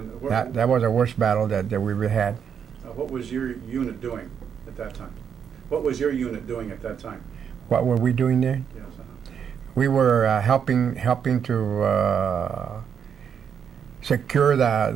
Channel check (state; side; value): quieter; left; 7.6 dB